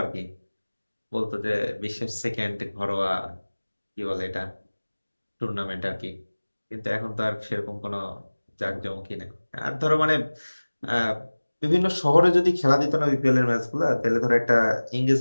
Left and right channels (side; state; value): both; inverted; correlation -1.00